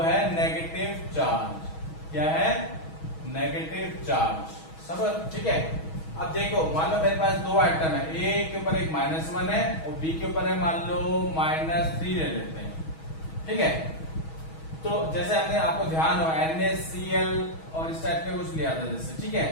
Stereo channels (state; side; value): late; right; 6.2 ms